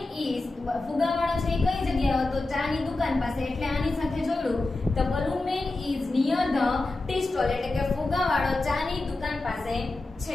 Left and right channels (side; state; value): right; quieter; 3.1 dB